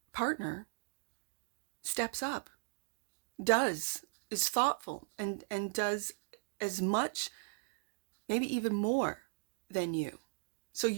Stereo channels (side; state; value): left; silent; digital silence